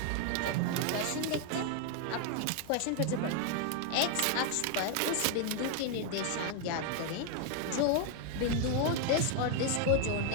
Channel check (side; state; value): both; different; correlation 0.00